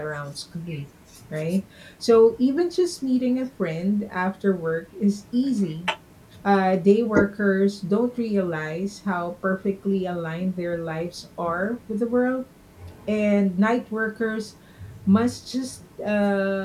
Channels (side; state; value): both; identical; correlation 1.00